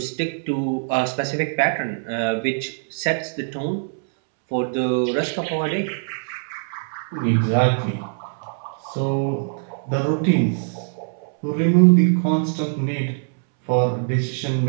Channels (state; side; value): silent; left; 63 dB below the other